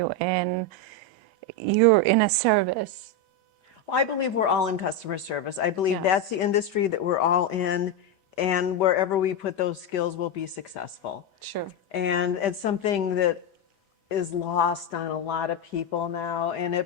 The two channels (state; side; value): late; right; 2.1 ms